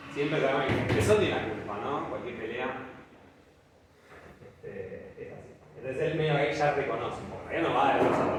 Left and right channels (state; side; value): identical; both; correlation 1.00